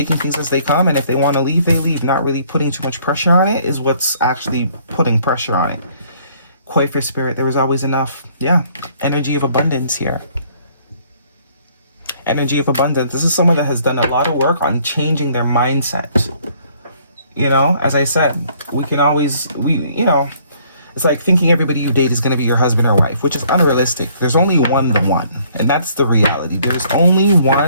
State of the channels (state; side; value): inverted; both; correlation -0.62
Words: things as they come. And if they want to leave, they leave. Not really putting too much pressure on it is what's actually putting pressure on it. Quite for spirit, there was always enough. Yeah, energy of abundance here. Energy of abundance. This is someone that has done a lot of work on changing their mindset. You know, as I said, we can always, you know, It's like thinking everybody you date is going to be your husband or wife, which is unrealistic. There's only one, the one. And that's the reality. There's only